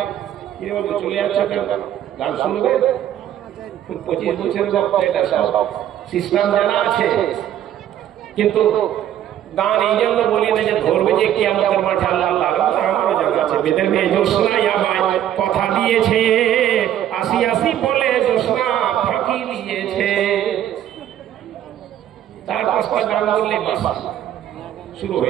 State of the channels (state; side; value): quieter; left; 11.2 dB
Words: কি বলবো, চলে যাচ্ছে কেন? গান শুনবে? 25 বছরের বক্তা, এটা সব সিস্টেম জানা আছে, কিন্তু গান এই জন্য বলি না যে ধরবে যে কিয়ামতের মাঠে আল্লাহ তাআলা। আমারও জানা আছে, বেদের মেয়ে জোসনাই আমায় কথা দিয়েছে, আসি আসি বলে জোসনা ফাঁকি দিয়েছে। चार पांच का गान बोलने बस शुरू हो